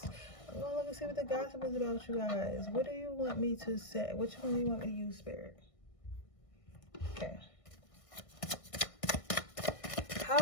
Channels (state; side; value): late; right; 1.6 ms